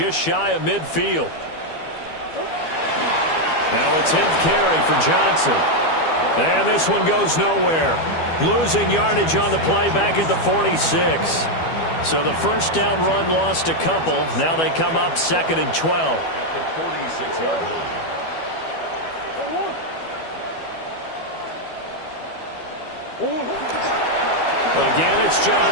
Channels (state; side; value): late; right; 12 ms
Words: shy of midfield. Now a 10th carry for Johnson. And this one goes nowhere. Losing yardage on the play back at the 46. So the first down run lost a couple. Now they come up 2nd and 12. At the 46-yard line. Again, it's